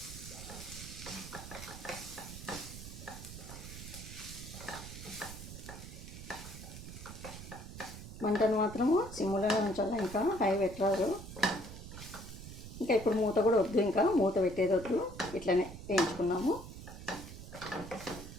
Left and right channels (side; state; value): right; noise; rumble, 12 dB below the sound